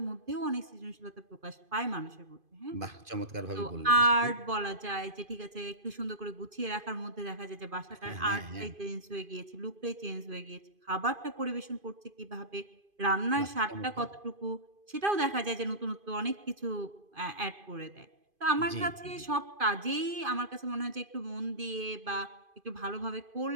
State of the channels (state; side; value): late; left; 2.5 ms